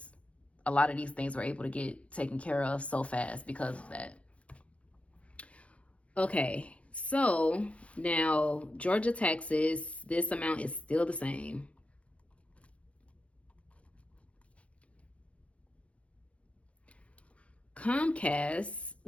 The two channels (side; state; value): right; late; 0.063 ms